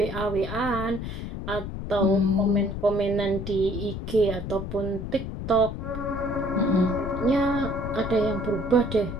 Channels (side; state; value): left; noise; rumble, 6 dB below the sound